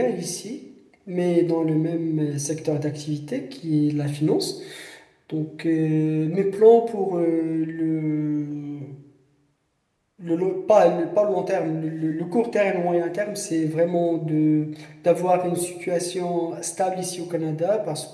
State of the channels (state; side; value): identical; both; correlation 1.00